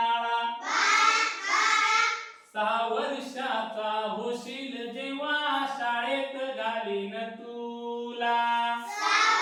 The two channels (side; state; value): both; identical; correlation 1.00